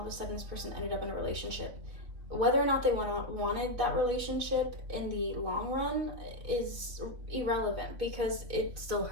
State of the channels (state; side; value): late; left; 3.4 ms